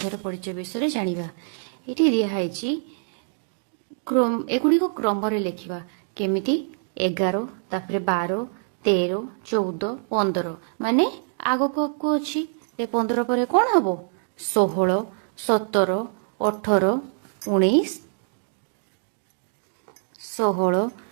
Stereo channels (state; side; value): silent; left; digital silence